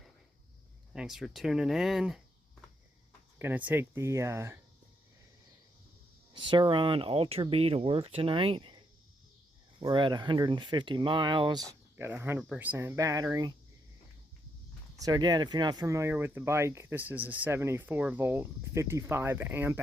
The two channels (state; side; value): normal; both; correlation 0.78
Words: Thanks for tuning in. Gonna take the Surron Ultra Bee to work tonight. We're at 150 miles, got a 100% battery. So again, if you're not familiar with the bike, this is a 74 volt, 55 amp